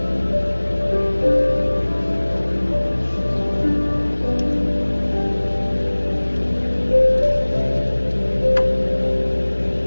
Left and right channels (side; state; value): both; inverted; correlation -1.00